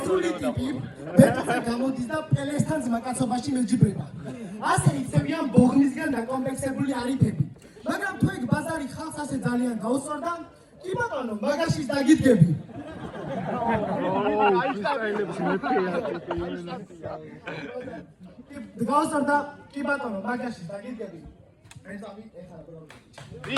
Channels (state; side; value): identical; both; correlation 1.00